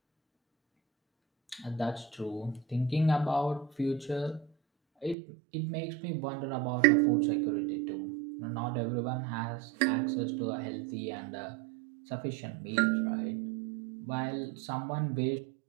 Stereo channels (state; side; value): drops out; left; at 5.2 s